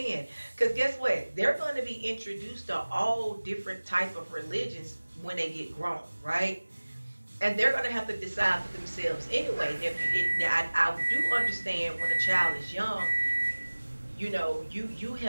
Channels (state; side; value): inverted; both; correlation -1.00